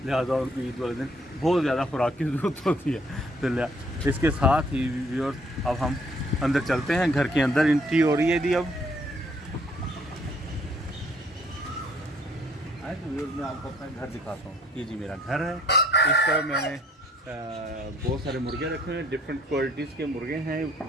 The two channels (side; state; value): both; normal; correlation 0.63